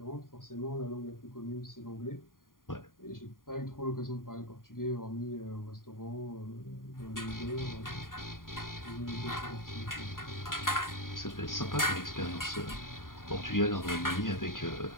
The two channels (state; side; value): late; right; 0.90 ms